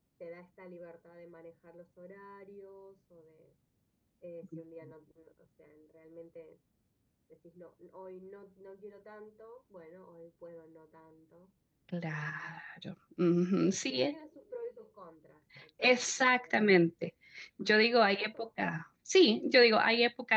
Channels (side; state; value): both; identical; correlation 1.00